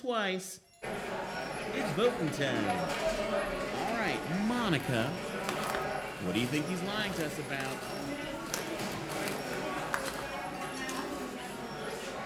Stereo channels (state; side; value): identical; both; correlation 1.00